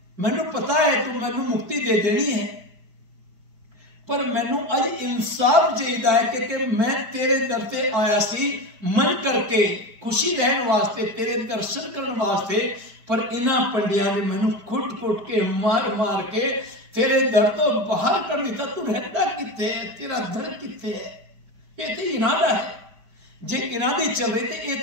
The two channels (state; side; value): late; left; 5.0 ms